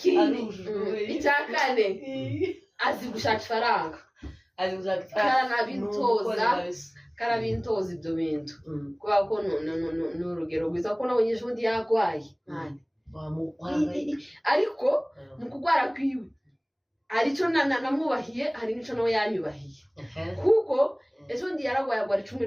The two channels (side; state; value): both; identical; correlation 1.00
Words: icya kane azi gushaka ifaranga karabintoza ibyo bintu kubera ko ni urugero rwiza ko nabonye ejo bundi yarwaye ariko mu kurwara kwiwe hari icyo namwubahiye hari n'icyo nawe yanyubahiye kuko ejo bundi yararwaye agwara